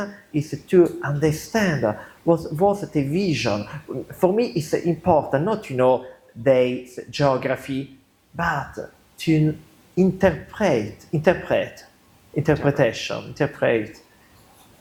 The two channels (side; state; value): both; identical; correlation 1.00